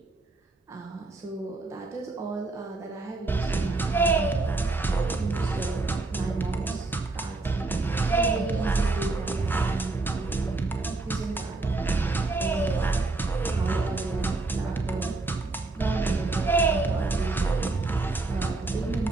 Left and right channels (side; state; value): left; quieter; 3.3 dB